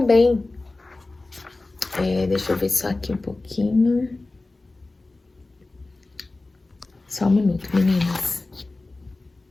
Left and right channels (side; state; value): right; quieter; 3.2 dB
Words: deixa eu ver só aqui um pouquinho. Só um minuto, meninas.